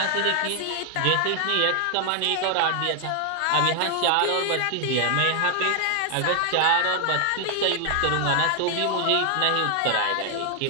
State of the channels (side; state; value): both; different; correlation 0.00